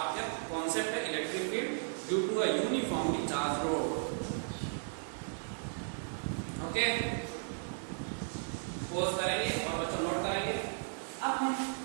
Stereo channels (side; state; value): left; silent; digital silence